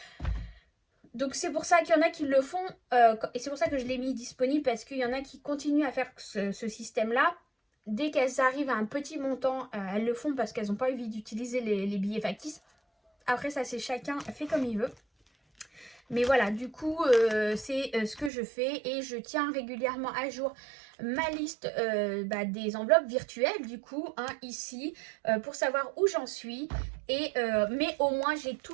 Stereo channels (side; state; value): left; drops out; at 18.3 s